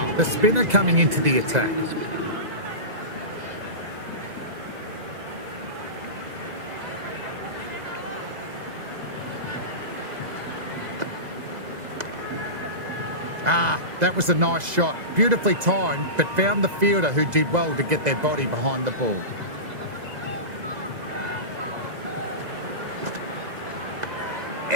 the spinner coming into the attack. That was a nice shot. Beautifully timed, but found the fielder who did well to get their body behind the ball.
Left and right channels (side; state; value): left; late; 2.0 ms